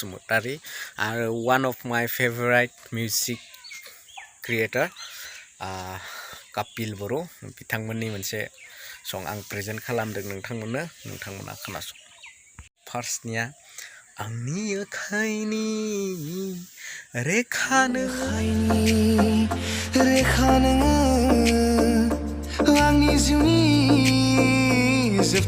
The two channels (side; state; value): both; identical; correlation 1.00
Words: and one of my favorite music creator, KAPIL BORO. बिथांमोननि मोनसे song आं present खालामदों नोंथांमोना खोनासं. फार्स्टनिया आंनि आखाइनि रेखा नोङो आंनि जिउनि